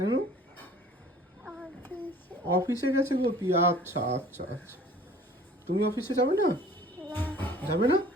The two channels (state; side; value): normal; both; correlation 0.49